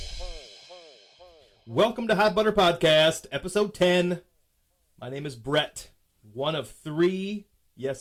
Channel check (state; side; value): identical; both; correlation 1.00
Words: Welcome to Hot Butter Podcast, episode 10. My name is Brett, one of three, yes,